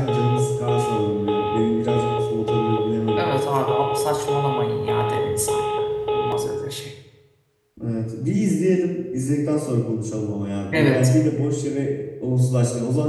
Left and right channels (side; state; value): both; identical; correlation 1.00